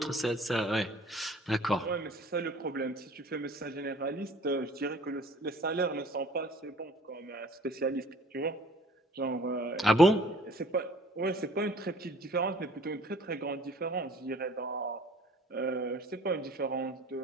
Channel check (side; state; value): both; normal; correlation 0.52